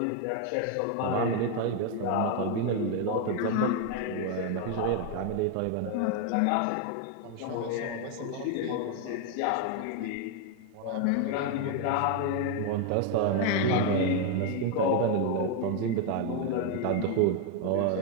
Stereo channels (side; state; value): both; different; correlation 0.01